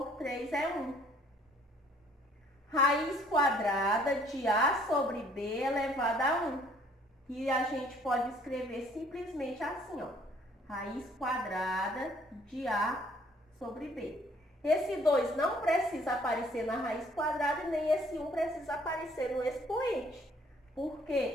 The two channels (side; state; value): both; normal; correlation 0.60